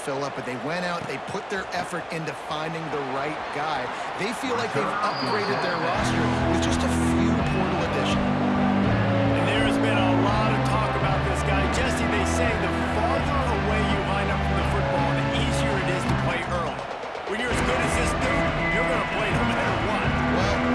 up, but they went out, they put their effort into finding the right guy. They feel like they've upgraded their roster with just a few portal additions. And there has been a lot of talk about this guy. Jesse, they say the farther away you line up from the football, the easier it is to play early. When you're as good as this dude, you're going to play no matter what.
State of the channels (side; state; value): both; identical; correlation 1.00